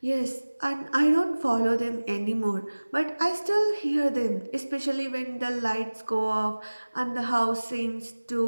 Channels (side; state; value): both; inverted; correlation -1.00